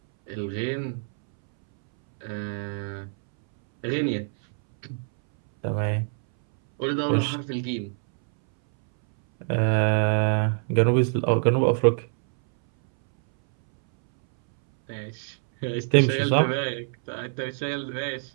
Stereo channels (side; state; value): left; silent; 62 dB below the other